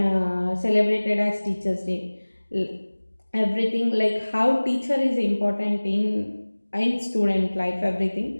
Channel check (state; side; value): inverted; both; correlation -1.00